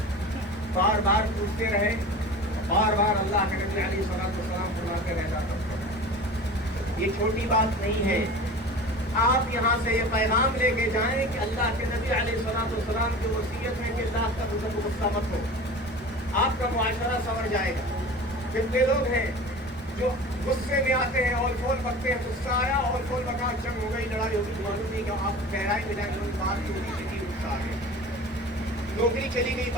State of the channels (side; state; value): both; normal; correlation 0.36